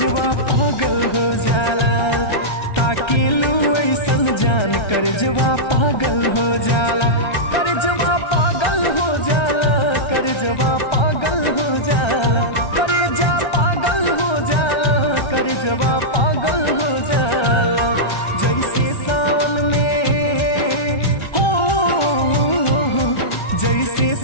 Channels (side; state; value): right; late; 1.3 ms